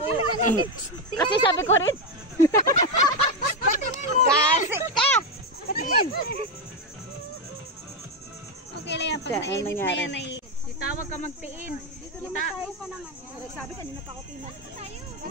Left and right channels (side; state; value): both; normal; correlation 0.07